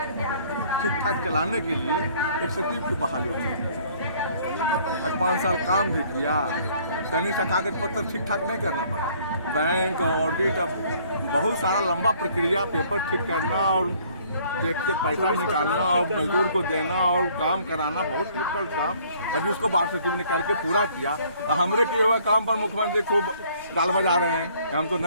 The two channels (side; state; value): both; inverted; correlation -0.59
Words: ठीक ठाक चलाने के लिए एक सचिव की बहाली की। आज 5 साल काम भी किया, सैनिक सा कागज पत्र ठीक ठाक नहीं करना पड़ा। बैंक ऑडिट, बहुत सारा लंबा प्रक्रिया, पेपर ठीक करना और टैक्स से पैसा निकालना और मजदूर को देना और काम कराना बहुत डिफिकल्ट काम। अभी उसको बात सचिव ने करके पूरा किया। हमरे किए हुए काम पर मुख्यमंत्री खूब गाल बजा रहे हैं कि हम तो